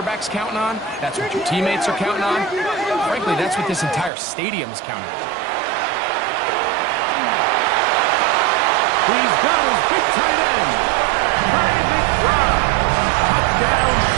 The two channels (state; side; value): drops out; left; at 4.1 s